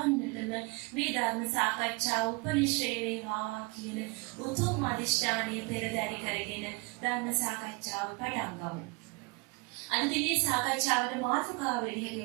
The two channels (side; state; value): left; quieter; 28.1 dB